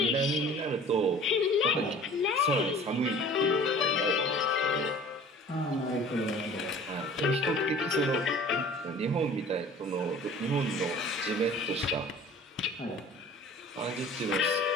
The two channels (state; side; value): normal; both; correlation 0.46